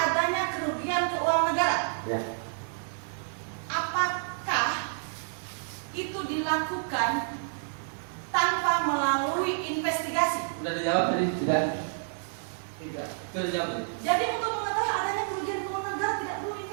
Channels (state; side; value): silent; left; digital silence